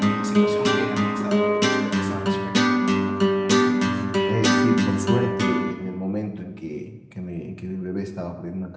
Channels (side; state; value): both; identical; correlation 1.00